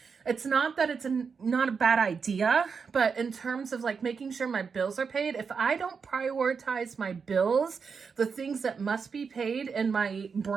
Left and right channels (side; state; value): left; quieter; 5.7 dB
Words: It's not that it's not a bad idea, but in terms of like making sure my bills are paid, if I don't prioritize my bills, the things that must be paid in my